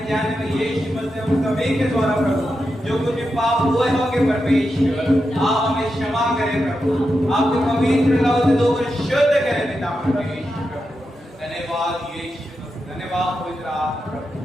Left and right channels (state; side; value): normal; both; correlation 0.88